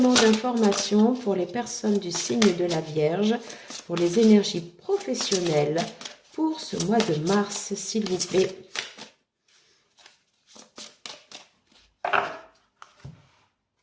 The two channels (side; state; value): both; identical; correlation 1.00